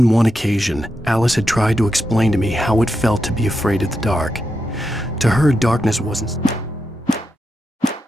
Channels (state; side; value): normal; both; correlation 0.86